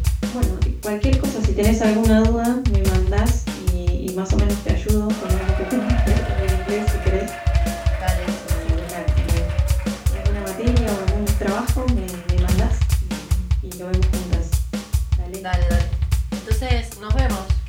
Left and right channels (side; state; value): both; identical; correlation 1.00